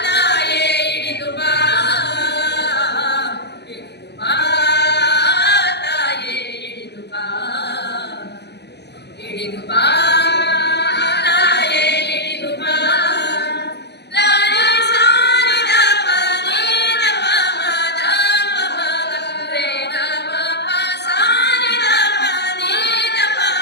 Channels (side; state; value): right; late; 0.49 ms